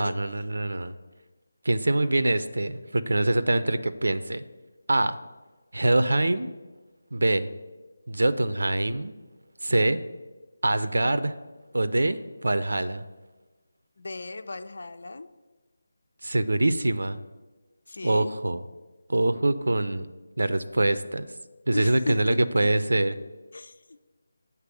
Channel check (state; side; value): inverted; both; correlation -0.98